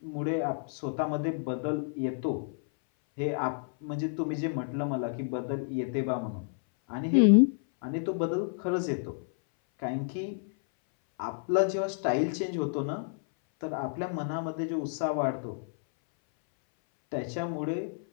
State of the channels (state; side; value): silent; right; 58 dB below the other